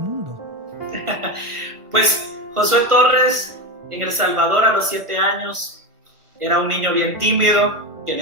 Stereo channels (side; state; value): left; late; 1.4 ms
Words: mundo? Pues Josué Torres en El Salvador a los 7 años era un niño bien tímido que